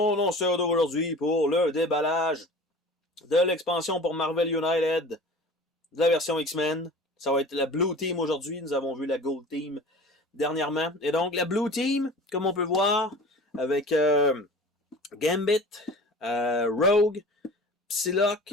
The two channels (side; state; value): both; normal; correlation 0.40